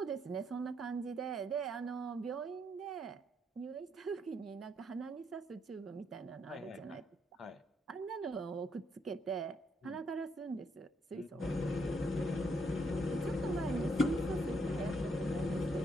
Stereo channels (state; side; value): normal; both; correlation 0.74